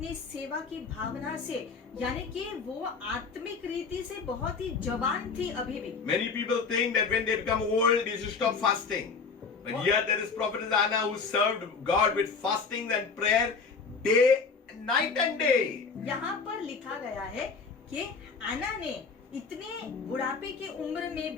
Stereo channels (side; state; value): right; quieter; 5.0 dB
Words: सेवा की भावना से, यानी कि वो आत्मिक रीति से बहुत ही जवान थी अभी भी। Many people think that when they become old, they should stop fasting. But here there is Prophetess Anna who served God with fasting and prayer night and day. यहाँ पर लिखा गया है कि आना ने इतने बुढ़ापे के उम्र में